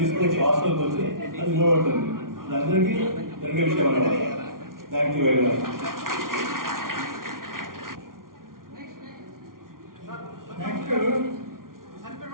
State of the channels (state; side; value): late; left; 0.91 ms